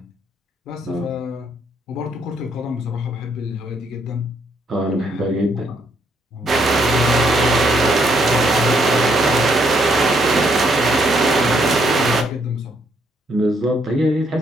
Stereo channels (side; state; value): both; normal; correlation 0.72